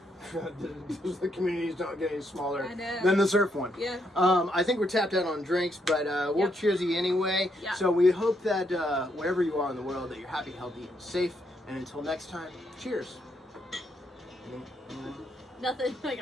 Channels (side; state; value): both; normal; correlation 0.76